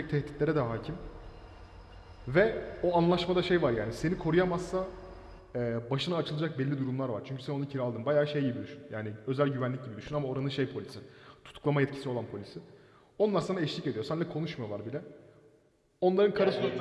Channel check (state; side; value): identical; both; correlation 1.00